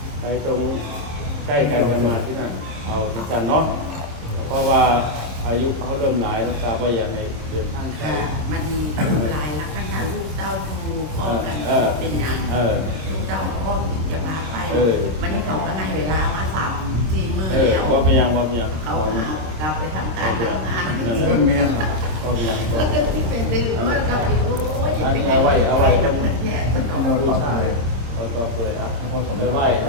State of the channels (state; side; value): late; left; 26 ms